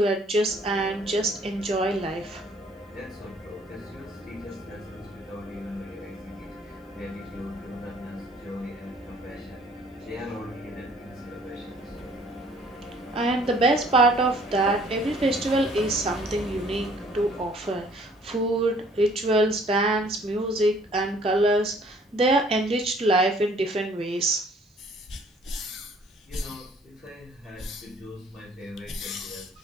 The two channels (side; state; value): both; normal; correlation 0.58